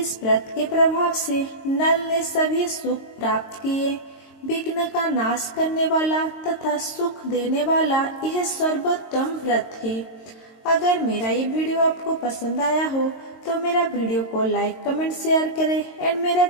व्रत के प्रभाव से नल ने सभी सुख प्राप्त किए। विघ्न का नाश करने वाला तथा सुख देने वाला यह सर्वोत्तम व्रत है। अगर मेरा ये वीडियो आपको पसंद आया हो तो मेरा वीडियो को लाइक, कमेंट, शेयर करें एंड मेरा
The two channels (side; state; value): right; late; 22 ms